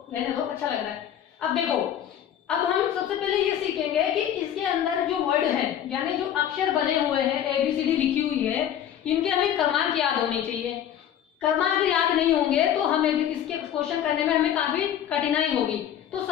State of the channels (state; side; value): quieter; right; 10.1 dB